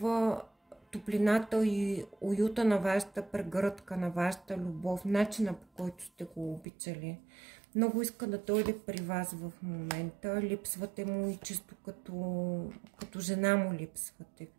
топлината и уюта на вашата прегръдка, на вашата любов, начина по който сте го обичали. Много иска да дойде при вас в момента. Липсвате му и чисто като жена му липсвате.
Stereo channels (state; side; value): drops out; left; at 6.7 s